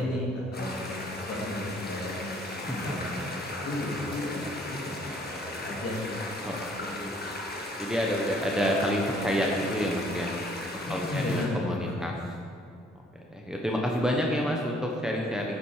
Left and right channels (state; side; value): normal; both; correlation 0.61